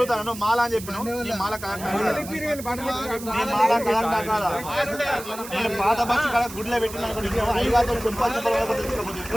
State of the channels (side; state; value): right; noise; hiss, 13 dB below the sound